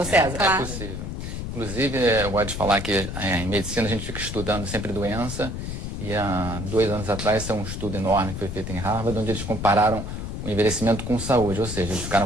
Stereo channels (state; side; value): noise; left; rumble, 6 dB below the sound